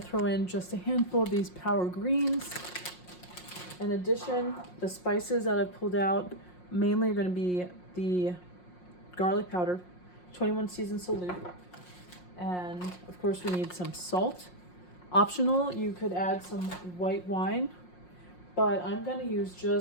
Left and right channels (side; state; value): right; late; 5.6 ms